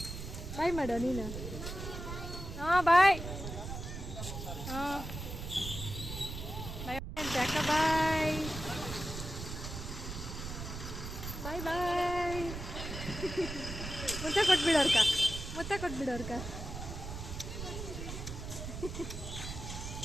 ಬಾಯ್ ಮಾಡೋ ನೀನು. ಹಾಂ ಬಾಯ್. ಬಾಯ್ ಬಾಯ್. ಮುತ್ತ ಕೊಟ್ಬಿಡೋರ್ಕ, ಮುತ್ತ ಕೊಟ್ಬಿಡೋರ್ಕ.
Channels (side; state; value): right; noise; rumble, 7 dB below the sound